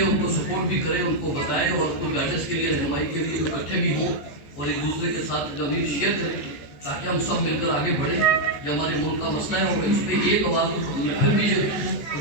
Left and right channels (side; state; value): right; late; 14 ms